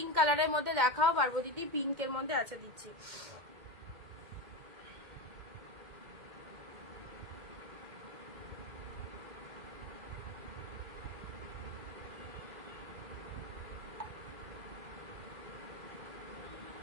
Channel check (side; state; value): left; late; 2.1 ms